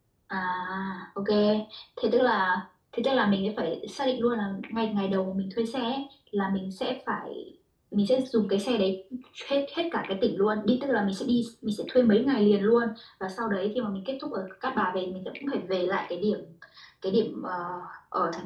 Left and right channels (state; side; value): identical; both; correlation 1.00